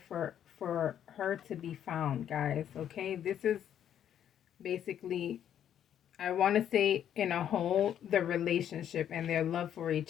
for her to be found, guys. Okay, this is basically, I want to say in a whole, the relationship and their love for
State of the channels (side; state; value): right; quieter; 9.9 dB